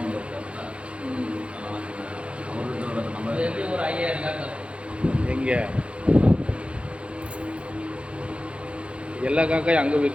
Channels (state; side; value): late; left; 0.060 ms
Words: எங்க எல்லா காக்காயும் அங்கே